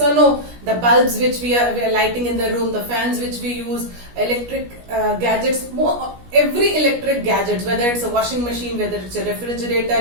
or no? The bulbs which we are lighting in the room, the fans which we use, electric gadgets, every electric gadget, whether it's a washing machine, whether it's a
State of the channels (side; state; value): left; late; 17 ms